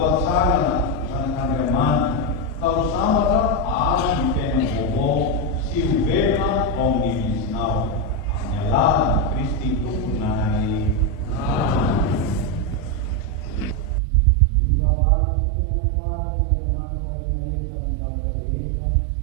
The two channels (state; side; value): drops out; left; at 14.0 s